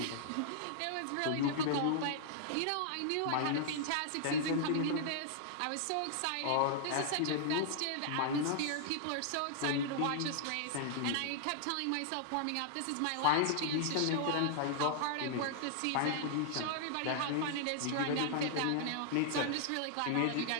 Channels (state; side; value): different; both; correlation -0.01